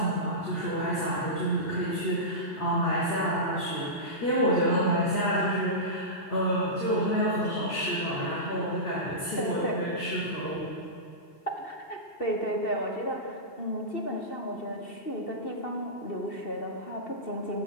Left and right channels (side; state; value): right; late; 2.7 ms